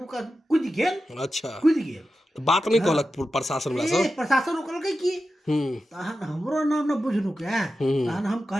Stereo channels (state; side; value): normal; both; correlation 0.92